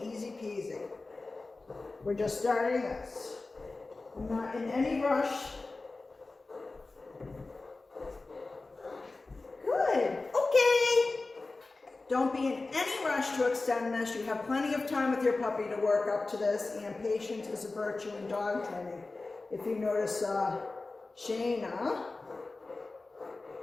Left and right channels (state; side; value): quieter; right; 3.5 dB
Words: easy peasy. We're just starting this. I'm not in any rush. Good. Okay. Don't be in any rush to extend this. You have plenty of time with your puppy to work up to this, and patience is a virtue in dog training. If you notice, Shayna